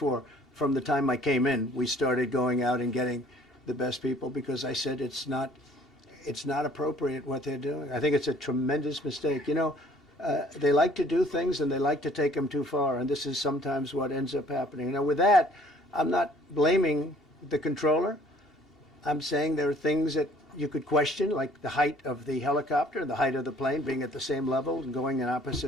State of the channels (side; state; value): both; normal; correlation 0.56